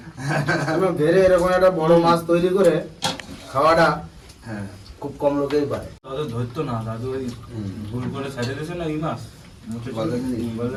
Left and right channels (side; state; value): both; identical; correlation 1.00